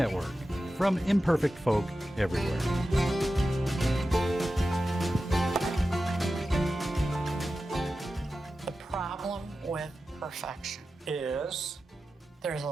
from imperfect folk everywhere. The problem with perfection Is? there's a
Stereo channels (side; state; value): both; normal; correlation 0.93